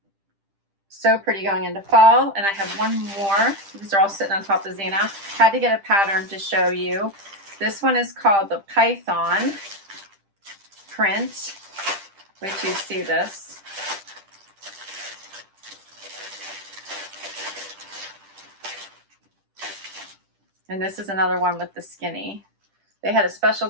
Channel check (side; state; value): left; late; 10 ms